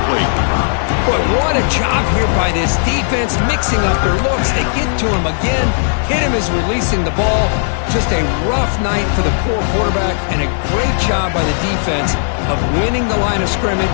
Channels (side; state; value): right; silent; 65 dB below the other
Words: But what a job here by this defense, mixing up their looks. They get to him again. Hit him as releasing the ball. Just a rough night for the poor quarterback, and a great job by the defense of winning the line of